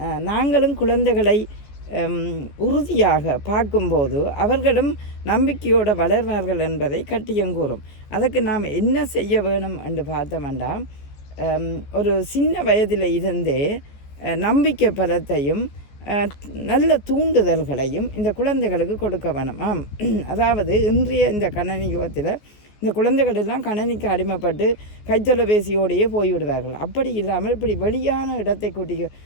நாங்களும் குழந்தைகளை உறுதியாக பார்க்கும்போது அவர்களும் நம்பிக்கையோடு வளர்வார்கள் என்பதை கட்டியங்கூறும். அதற்கு நாம் என்ன செய்ய வேணும் என்று பார்த்தோம்னா, ஒரு சின்ன வயதில் இருந்தே நம்பிக்கை பலத்தையும் நல்ல தூண்டுதல்களையும் இந்த குழந்தைகளுக்கு கொடுக்க வேணும். அதாவது இன்றைய இந்த கணனி யுகத்தில் இந்த குழந்தைகள் எல்லாம் கணனிக்கு அடிமைப்பட்டு கைத்தொலைபேசியோடையே போய்விடுவார்கள். அப்படி இல்லாமல் இப்படி வெளியான இடத்தை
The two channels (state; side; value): late; right; 14 ms